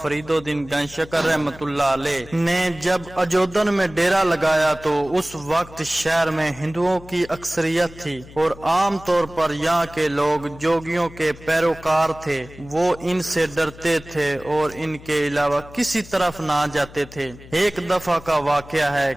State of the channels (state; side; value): noise; left; hum, 19 dB below the sound